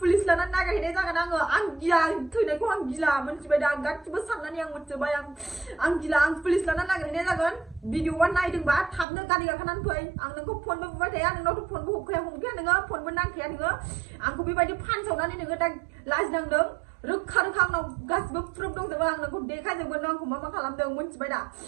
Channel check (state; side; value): drops out; left; at 9.1 s